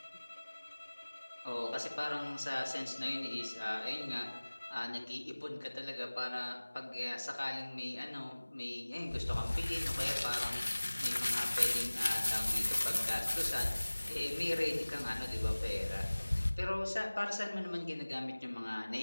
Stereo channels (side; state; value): both; inverted; correlation -1.00